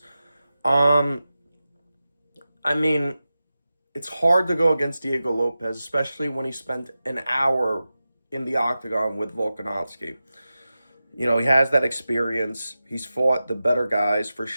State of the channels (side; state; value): both; inverted; correlation -0.93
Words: Um, I mean, it's hard to go against Diego Lopez, especially when he spent an hour in the octagon with Volkanovski. He has that experience. He's fought the better guys for